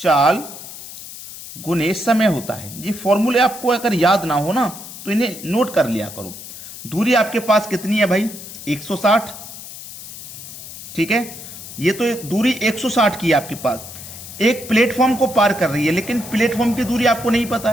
गुने समय होता है। ये फॉर्मूले आपको अगर याद ना हो ना तो इन्हें नोट कर लिया करो। दूरी आपके पास कितनी है भाई? 160। ठीक है, ये तो दूरी 160 की है आपके पास। एक प्लेटफॉर्म को पार कर रही है, लेकिन प्लेटफॉर्म की दूरी आपको नहीं पता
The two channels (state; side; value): noise; left; hiss, 13 dB below the sound